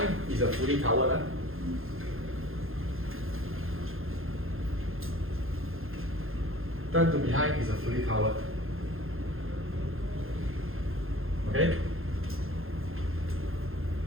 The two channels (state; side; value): late; left; 0.60 ms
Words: is a fully covered. Huh? Turn to behind is a fully covered. Okay?